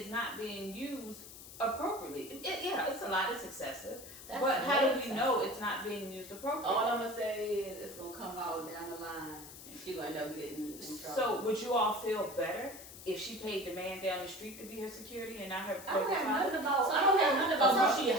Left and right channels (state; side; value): noise; left; hiss, 15 dB below the sound